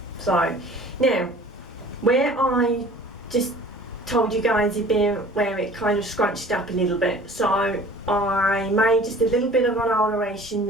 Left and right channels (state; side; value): normal; both; correlation 0.47